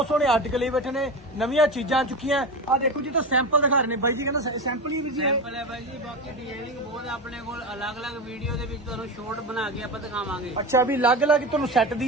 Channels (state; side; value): normal; both; correlation 0.23